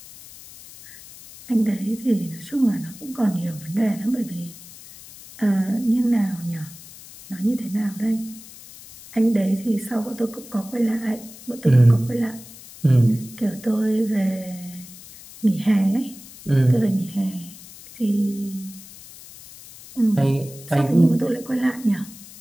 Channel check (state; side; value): noise; left; hiss, 18 dB below the sound